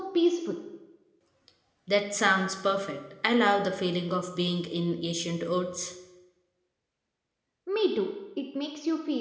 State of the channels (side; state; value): both; identical; correlation 1.00